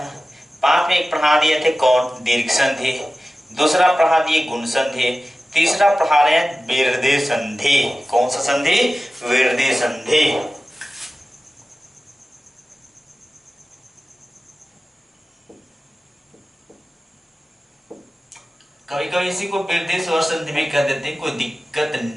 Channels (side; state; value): both; normal; correlation 0.95